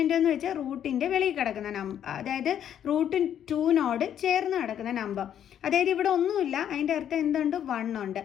എന്ന് വെച്ചാൽ റൂട്ടിൻ്റെ വെളിയിൽ കിടക്കുന്ന നമ്പർ, അതായത് √2നോട് ചേർന്ന് കിടക്കുന്ന നമ്പർ. അതായത് ഇവിടെ ഒന്നുമില്ല, അതിൻ്റെ അർത്ഥം എന്തുണ്ട്, 1 ഉണ്ട്.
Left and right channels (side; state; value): right; quieter; 9.8 dB